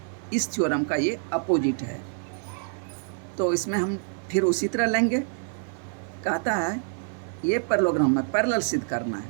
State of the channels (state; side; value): silent; left; digital silence